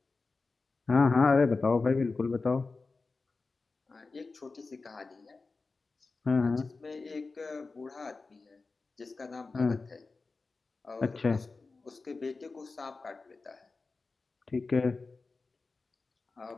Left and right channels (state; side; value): quieter; right; 3.9 dB